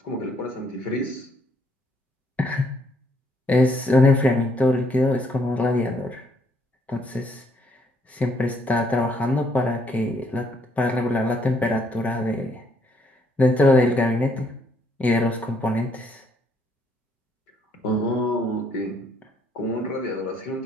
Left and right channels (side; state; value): both; normal; correlation 0.69